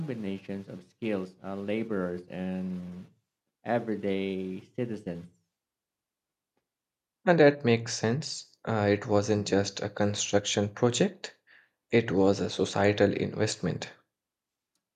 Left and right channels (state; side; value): identical; both; correlation 1.00